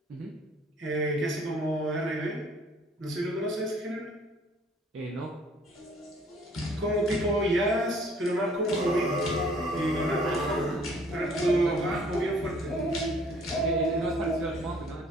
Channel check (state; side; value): normal; both; correlation 0.57